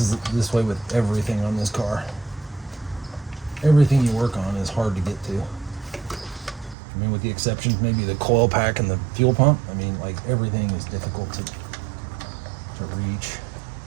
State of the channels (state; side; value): drops out; left; at 6.8 s